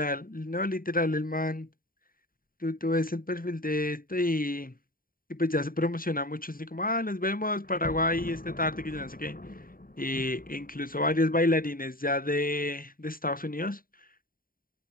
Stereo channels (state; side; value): late; right; 0.41 ms